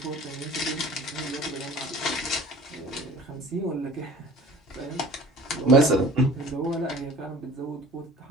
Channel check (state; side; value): normal; both; correlation 0.44